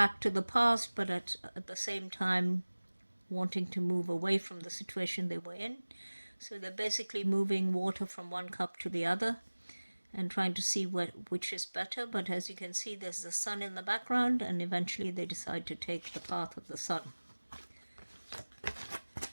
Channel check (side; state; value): both; inverted; correlation -1.00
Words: to the past, but at the same time wanting to move away from the situation they were in. So they're basically moving water from one cup to the other and trying to see which is better. But as you can see, there's the Sun in the background, and eventually they decide to take the path of the Sun.